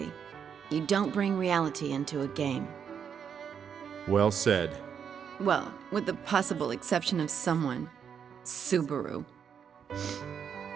You don't bring reality into a game. Well said. Well, with the possible exception of someone. Subaru.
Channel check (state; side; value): quieter; left; 7.5 dB